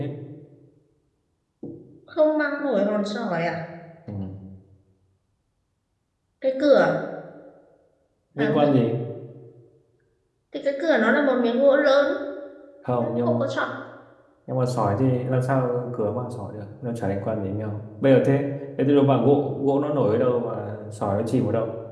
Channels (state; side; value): identical; both; correlation 1.00